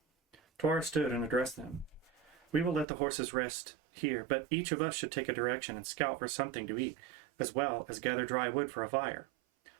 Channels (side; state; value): left; drops out; at 2.9 s